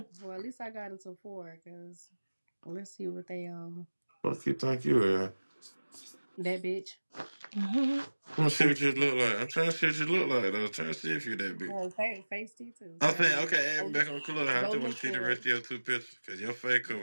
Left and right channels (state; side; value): inverted; both; correlation -1.00